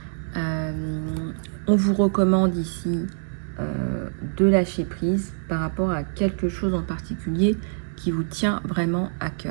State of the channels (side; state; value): left; silent; digital silence